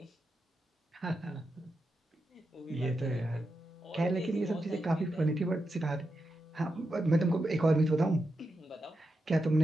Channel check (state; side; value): normal; both; correlation 0.87